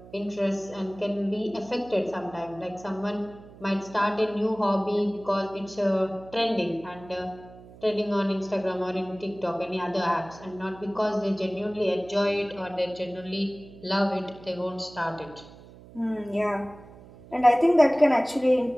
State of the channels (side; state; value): right; noise; hum, 20 dB below the sound